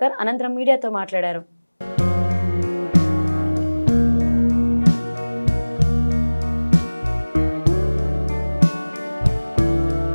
అనంతరం మీడియాతో మాట్లాడారు.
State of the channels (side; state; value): both; inverted; correlation -1.00